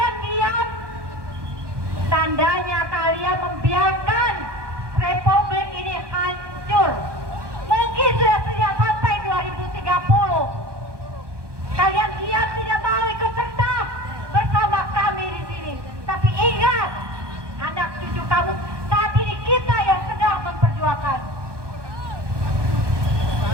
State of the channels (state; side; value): late; left; 1.2 ms